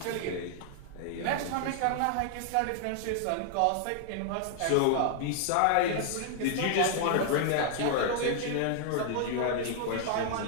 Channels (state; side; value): different; both; correlation 0.00